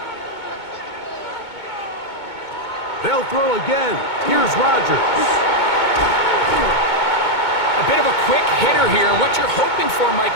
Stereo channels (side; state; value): right; late; 2.2 ms